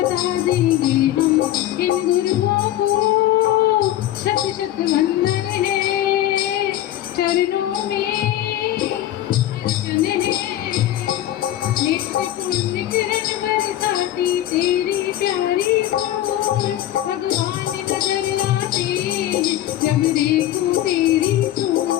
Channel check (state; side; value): quieter; right; 13.2 dB